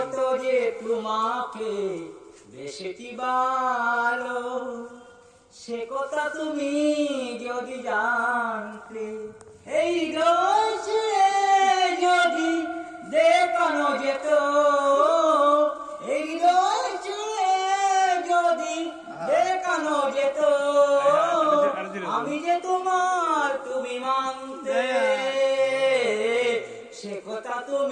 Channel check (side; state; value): both; identical; correlation 1.00